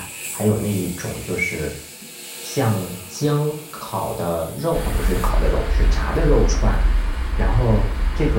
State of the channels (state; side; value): identical; both; correlation 1.00